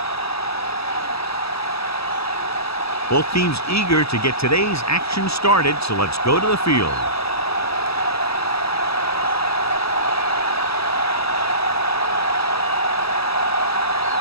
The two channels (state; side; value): late; right; 0.77 ms